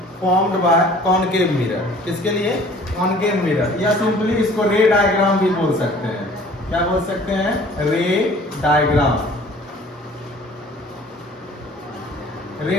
formed by concave mirror. किसके लिए? कॉनकेव मिरर, या सिंपली इसको रे डायग्राम भी बोल सकते हैं। क्या बोल सकते हैं? रे डायग्राम,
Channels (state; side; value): normal; both; correlation 0.51